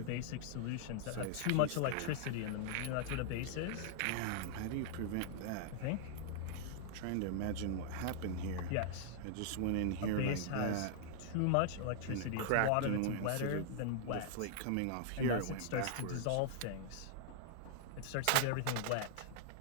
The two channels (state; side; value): different; both; correlation -0.01